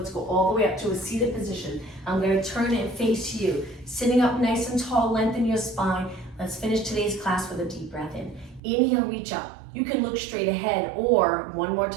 go all the way up to a seated position. I'm gonna turn and face you. Sitting up nice and tall, lengthen your spine. Let's finish today's class with a deep breath in. Inhale, reach up. You can look straight ahead, or one more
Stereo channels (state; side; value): drops out; left; at 8.6 s